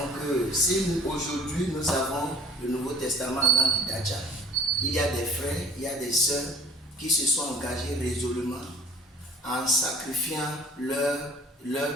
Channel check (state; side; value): normal; both; correlation 0.49